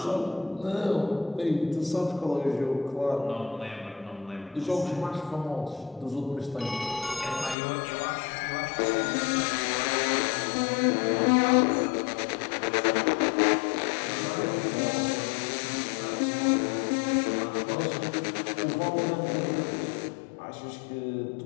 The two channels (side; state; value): right; drops out; at 7.6 s